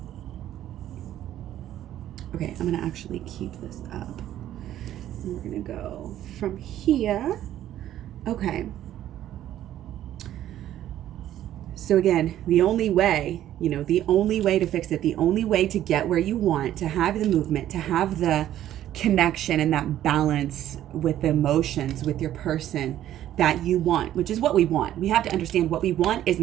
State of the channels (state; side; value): quieter; left; 12.3 dB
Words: Okay, I'm going to actually keep this up. And we're going to go from here. Okay. So again, the only way to fix it, the only way to get where you want, to have the movement, to have the connection and that balance with the emotions, with your person, that you want, which is what we want. We have to understand what we want is